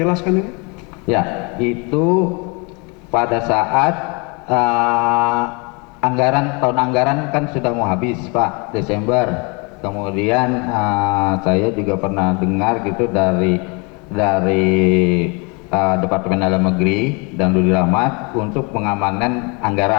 ini? Ya, itu pada saat tahun anggaran kan sudah mau habis Pak, Desember. Kemudian saya juga pernah dengar gitu dari Departemen Dalam Negeri dan Budi Rahmat untuk pengamanan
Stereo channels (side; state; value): right; quieter; 31.1 dB